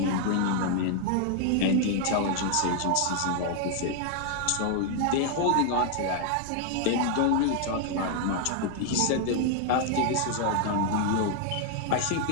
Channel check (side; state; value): both; different; correlation 0.00